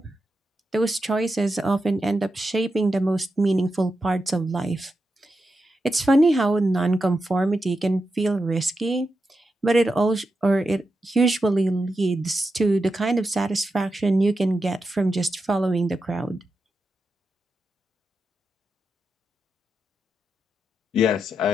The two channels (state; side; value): normal; both; correlation 0.88